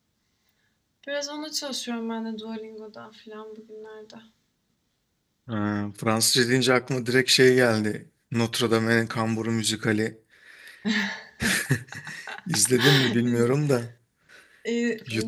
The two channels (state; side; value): identical; both; correlation 1.00